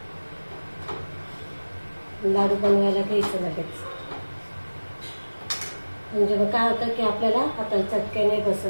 लाडू बनवायला घ्यायचं लगेच. म्हणजे मग काय होतं की आपल्याला हाताला चटके नाही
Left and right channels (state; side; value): inverted; both; correlation -1.00